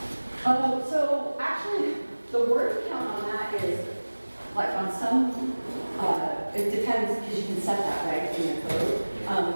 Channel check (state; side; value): inverted; both; correlation -1.00